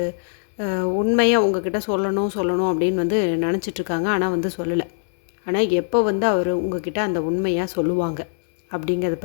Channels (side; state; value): right; silent; 64 dB below the other